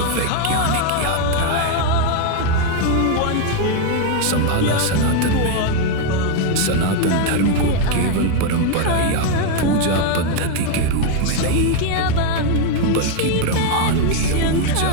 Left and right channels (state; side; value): different; both; correlation 0.01